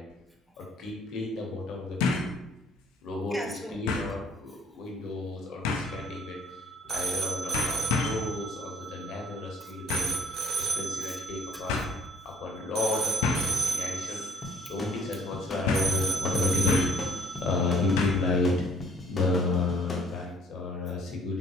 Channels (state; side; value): normal; both; correlation 0.62